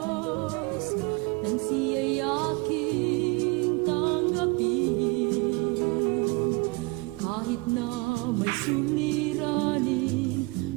nang siya'y aking tanggapin. Kahit na may suliranin,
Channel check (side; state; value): left; quieter; 26.6 dB